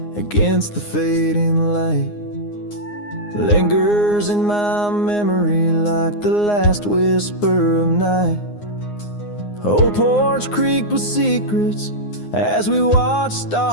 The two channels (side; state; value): right; late; 9.7 ms